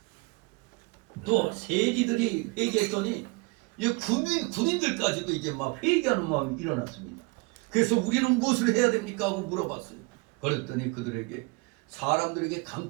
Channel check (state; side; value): quieter; left; 26.5 dB